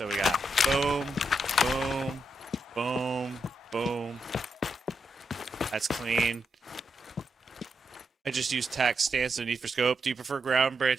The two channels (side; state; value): both; normal; correlation 0.83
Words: we got boom, boom, boom, boom. That's clean. I just use tac stance and need for scope. Do you prefer ground